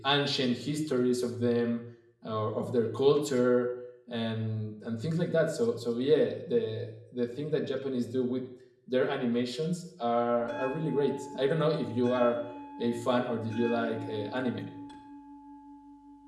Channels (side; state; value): both; identical; correlation 1.00